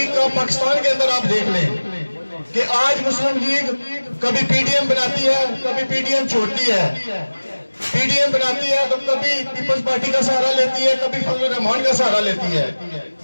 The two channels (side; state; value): both; inverted; correlation -1.00